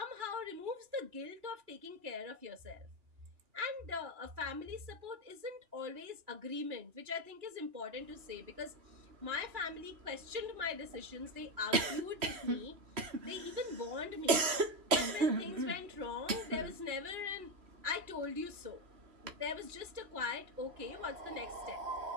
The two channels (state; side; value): late; left; 3.0 ms